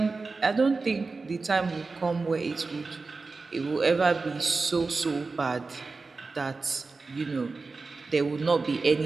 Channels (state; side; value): quieter; left; 4.0 dB